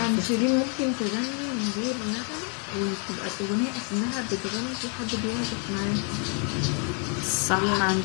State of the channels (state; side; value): quieter; right; 39.6 dB